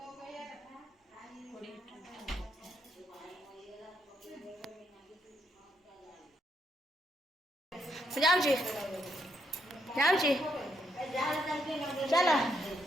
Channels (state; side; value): normal; both; correlation 0.77